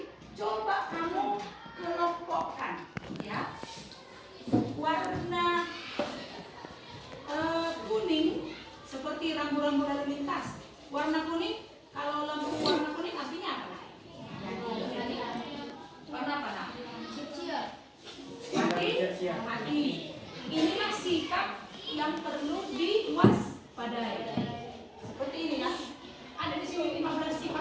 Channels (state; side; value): identical; both; correlation 1.00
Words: coba kamu kelompokkan ya, warna kuning seperti rambu-rambu lalu lintas. Warna kuning, kalau lampu warna kuning artinya apa? Warna apa? Hati. Inilah sikap yang perlu diwaspadai. Seperti ini ya. Ada di sini 15